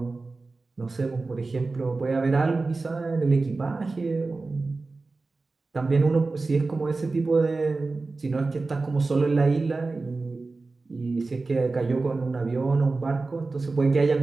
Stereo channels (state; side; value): quieter; left; 3.6 dB